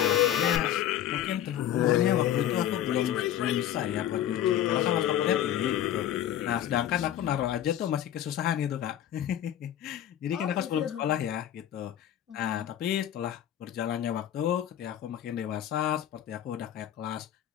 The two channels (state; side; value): quieter; right; 11.2 dB